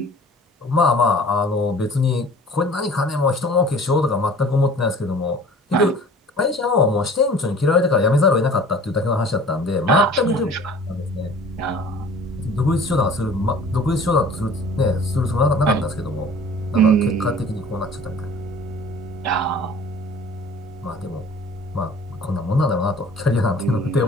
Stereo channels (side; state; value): both; normal; correlation 0.48